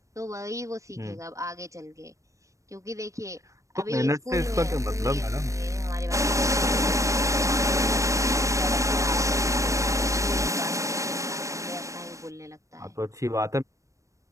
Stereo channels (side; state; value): left; late; 0.15 ms